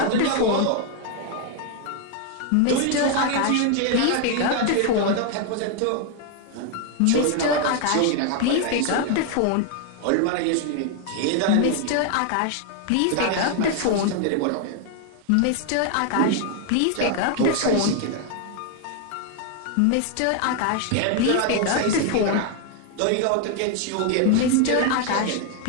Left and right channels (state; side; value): different; both; correlation 0.00